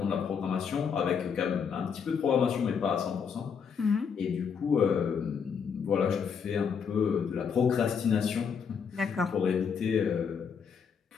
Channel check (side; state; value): right; quieter; 6.6 dB